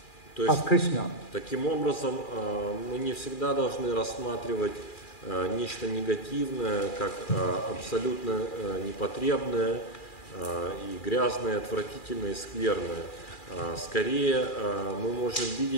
of Krishna. Таким образом, мы не всегда должны рассматривать нечто негативное как абсолютно непотребное и грязное, отвратительное и скверное. Скорее, мы можем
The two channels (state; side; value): late; right; 2.4 ms